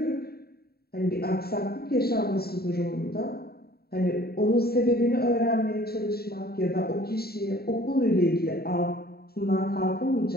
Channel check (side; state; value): right; late; 0.45 ms